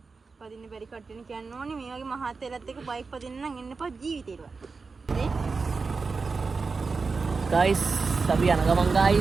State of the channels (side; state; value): left; quieter; 4.5 dB